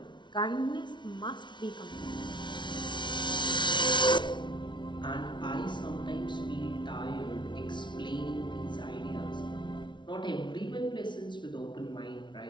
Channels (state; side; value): late; right; 0.23 ms